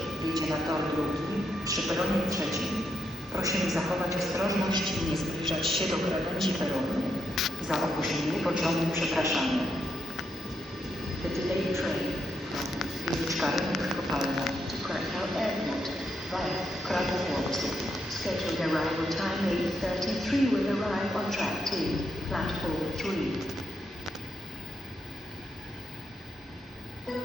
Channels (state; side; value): normal; both; correlation 0.80